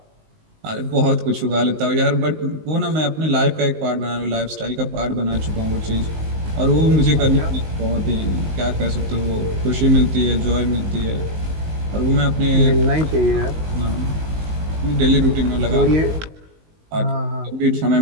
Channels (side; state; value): left; late; 19 ms